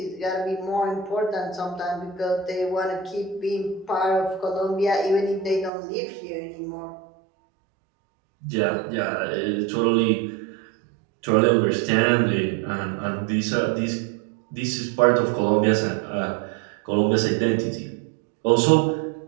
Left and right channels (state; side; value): drops out; left; at 5.7 s